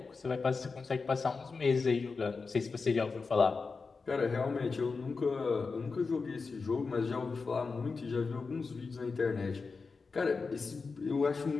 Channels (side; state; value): right; quieter; 4.5 dB